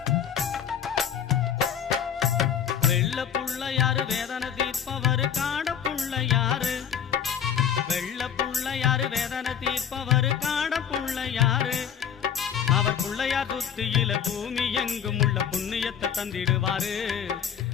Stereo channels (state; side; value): quieter; right; 8.4 dB